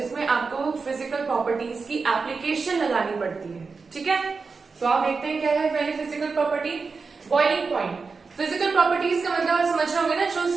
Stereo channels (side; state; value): left; quieter; 4.6 dB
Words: आपको फिजिकल प्रॉपर्टीज की एप्लीकेशन लगानी पड़ती है। ठीक है, तो आप देखते हैं क्या है पहली physical property, boiling point. Physical properties का मतलब आप समझ रहे होंगे ना, जो